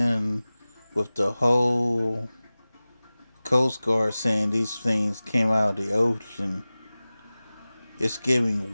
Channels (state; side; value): inverted; both; correlation -0.98